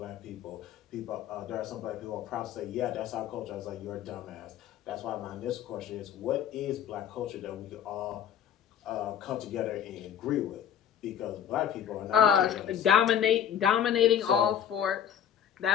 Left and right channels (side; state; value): right; quieter; 9.3 dB